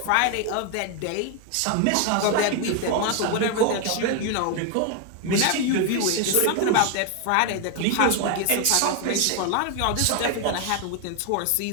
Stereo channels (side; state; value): both; different; correlation 0.01